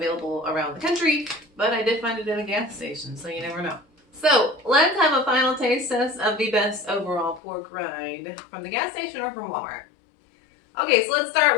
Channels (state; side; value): drops out; right; at 7.4 s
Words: around the country, but I did find it at a gas station, so you never know. So let's have a final taste test of the best overall pork rind from the gas station or from Walmart. Okay, so let's start